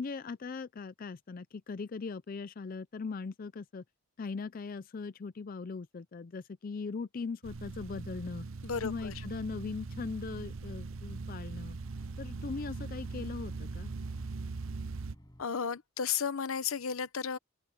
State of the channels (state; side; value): quieter; right; 3.1 dB